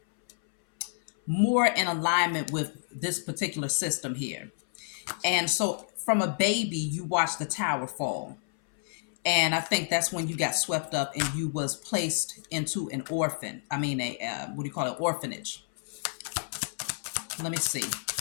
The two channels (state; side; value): silent; right; 58 dB below the other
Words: more in alignment with this particular system here. And so from a baby, you watch the tower fall. And I think that's when you got swept up and you was placed into an what do you call it? Orphanage. Let me see.